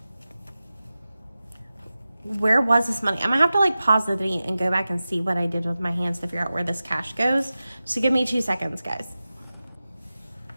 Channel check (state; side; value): inverted; both; correlation -0.95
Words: Where was this money? I'm gonna have to like pause the video and go back and see what I did with my hands to figure out where this cash goes. So give me 2 seconds, guys.